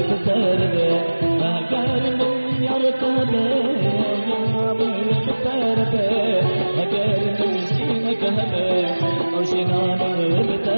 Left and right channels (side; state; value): both; inverted; correlation -1.00